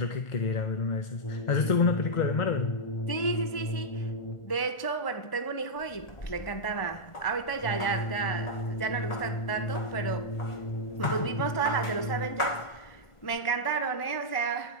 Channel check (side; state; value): right; late; 1.4 ms